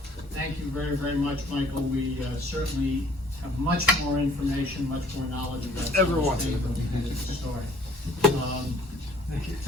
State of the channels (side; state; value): both; normal; correlation 0.57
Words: Thank you very, very much, Michael. We certainly have much more information, much more knowledge about Everyone. the story.